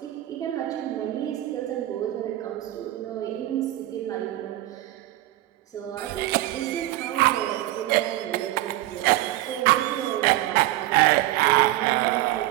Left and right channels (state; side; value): quieter; left; 16.0 dB